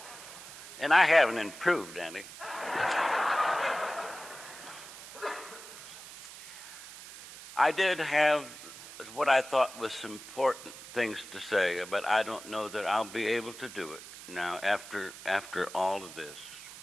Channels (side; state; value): right; noise; hiss, 14 dB below the sound